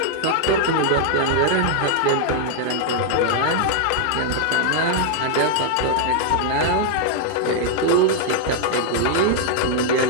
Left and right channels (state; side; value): different; both; correlation -0.01